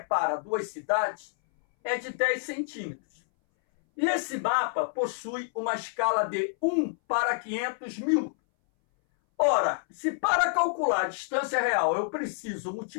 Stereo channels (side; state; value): right; silent; 59 dB below the other